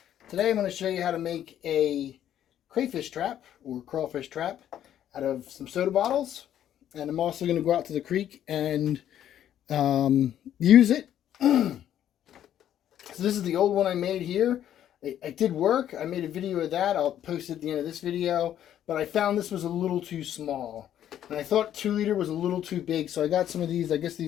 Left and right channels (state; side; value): quieter; right; 10.9 dB